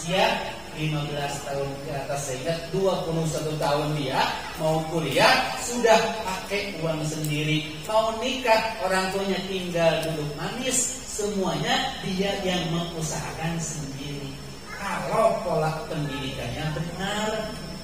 15 tahun ke atas, sehingga 21 tahun dia mau kuliah sudah pakai uang sendiri, mau nikah orang tuanya tinggal duduk manis, semuanya dia yang mengusahakan sendiri. Kalau pola pendidikannya benar.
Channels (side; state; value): both; identical; correlation 1.00